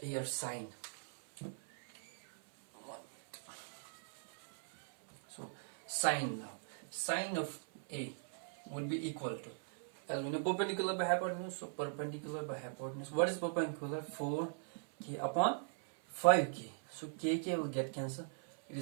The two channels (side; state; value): left; silent; 51 dB below the other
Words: sine. sine now. Sine of A would be equal to, as we know, perpendicular by hypotenuse. So perpendicular by hypotenuse. What is perpendicular? 4k upon 5k. So kk will get cancelled. It